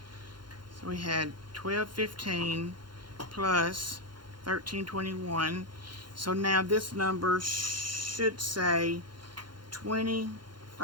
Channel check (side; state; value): left; late; 0.71 ms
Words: So we had $1,215 plus $1,321. So now this number should say